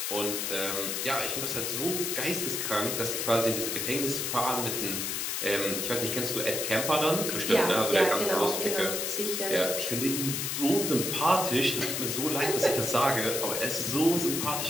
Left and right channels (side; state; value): left; noise; hiss, 1 dB below the sound